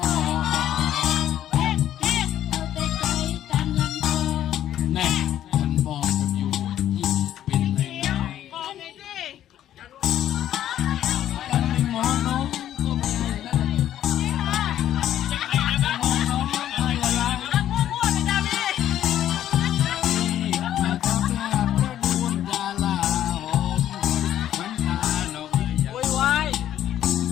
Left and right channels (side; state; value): right; quieter; 11.7 dB